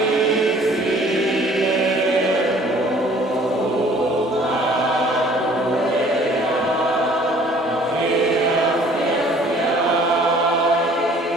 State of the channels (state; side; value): normal; both; correlation 0.54